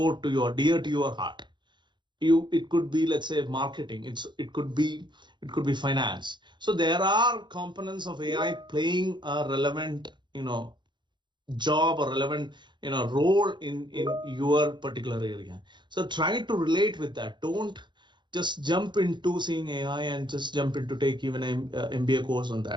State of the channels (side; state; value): left; late; 0.22 ms